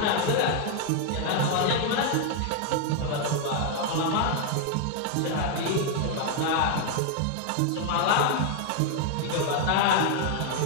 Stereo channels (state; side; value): different; both; correlation 0.00